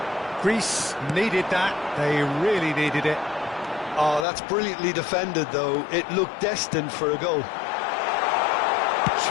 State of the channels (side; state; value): right; drops out; at 4.2 s